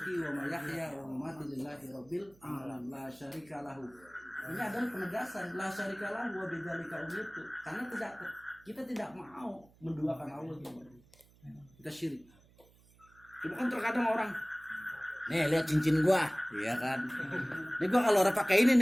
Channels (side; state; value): right; noise; hum, 28 dB below the sound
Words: wa mahyaya wa mamati lillahi rabbil alamin la syarika lahu. Ini adalah penegasan la syarika lahu wa bidzalika umirtu. Karena kita tidak mau menduakan Allah gitu. Kita syirik. Cuma kan terkadang orang, nih lihat cincin gua, iya kan. Nih gua kalau orang pakai ini